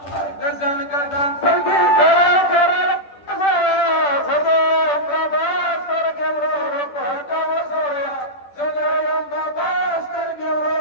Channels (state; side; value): late; right; 10 ms